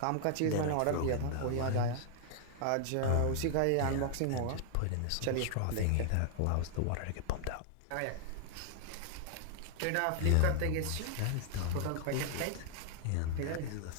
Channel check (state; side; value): different; both; correlation 0.00